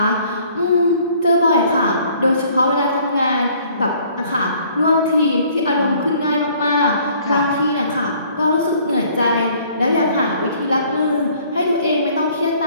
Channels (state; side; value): inverted; both; correlation -0.58